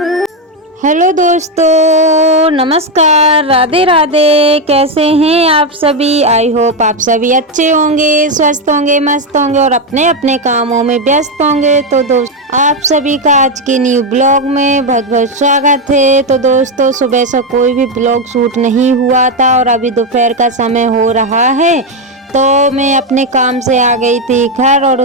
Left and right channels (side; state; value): both; normal; correlation 0.07